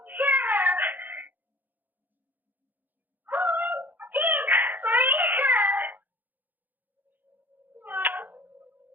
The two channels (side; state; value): left; late; 0.087 ms